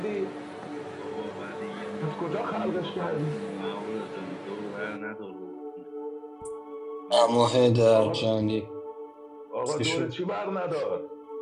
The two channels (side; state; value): both; identical; correlation 1.00